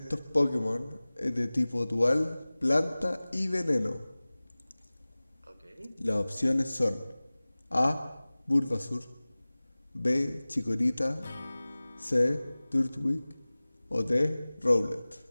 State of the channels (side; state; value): both; inverted; correlation -0.99